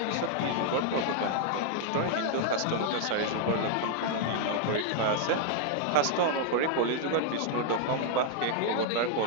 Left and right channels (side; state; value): both; different; correlation 0.00